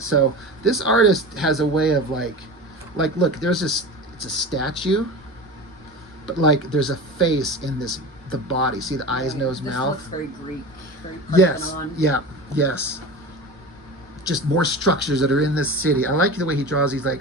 So this artist has a way of like look, there's this, it's a statue, but like there's a face in the body. See the eyes, nose, mouth? Looks very Greek, very Parthenon. Yes, yes. Just more structures that are in this city. I like the way he draws these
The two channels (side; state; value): both; normal; correlation 0.31